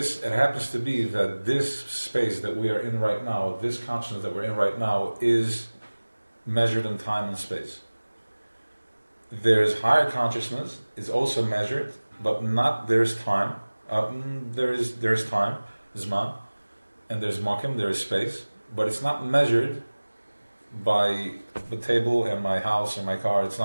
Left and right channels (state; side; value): inverted; both; correlation -1.00